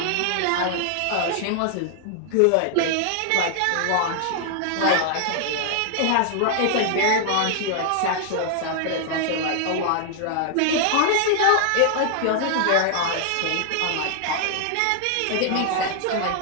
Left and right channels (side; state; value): both; different; correlation -0.01